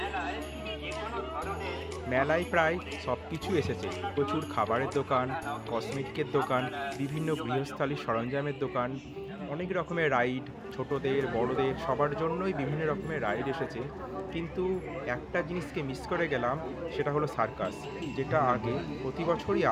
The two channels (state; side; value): identical; both; correlation 1.00